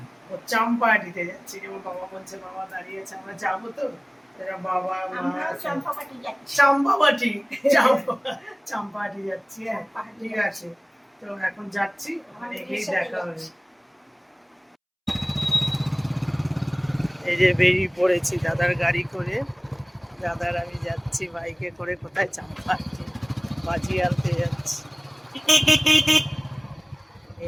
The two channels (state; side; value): identical; both; correlation 1.00